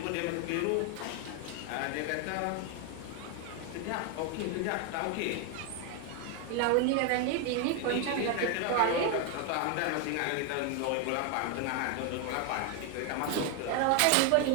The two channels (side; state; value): both; different; correlation 0.01